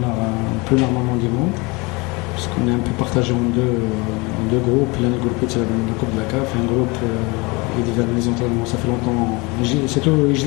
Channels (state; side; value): quieter; right; 26.4 dB